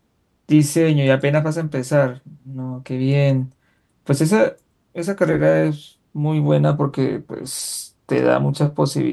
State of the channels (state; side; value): identical; both; correlation 1.00